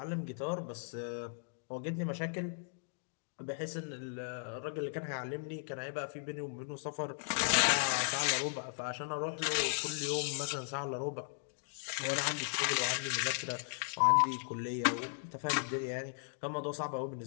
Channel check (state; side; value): silent; right; digital silence